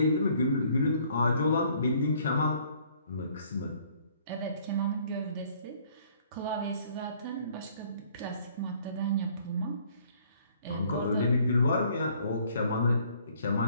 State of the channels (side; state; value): both; inverted; correlation -0.60